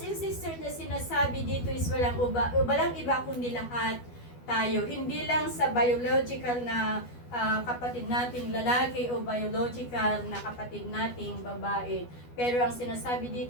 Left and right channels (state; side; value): late; right; 12 ms